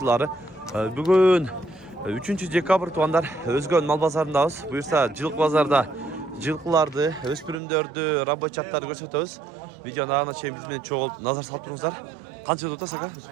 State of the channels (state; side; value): drops out; left; at 7.6 s